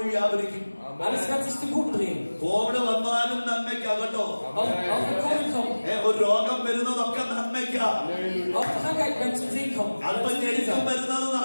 വ്യാപരിക്കും. Alles wird sich zum Guten drehen. Covid വന്നാലും നന്മയ്ക്കാകട്ടോ. Auch wenn Covid kommt, ഒരു രോഗം വരുന്നതൊക്കെ നന്മയ്ക്കാ. auch Krankheit wird zum Segen kommen. അല്പം ഞെരുക്കം വരുന്നത്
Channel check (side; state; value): both; inverted; correlation -1.00